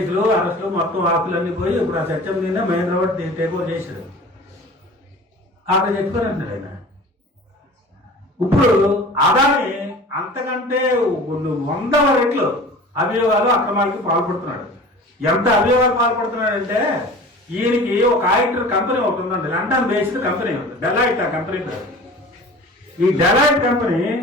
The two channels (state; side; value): normal; both; correlation 0.40